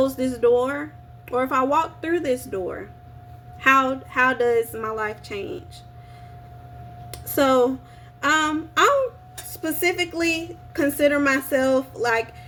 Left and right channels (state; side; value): identical; both; correlation 1.00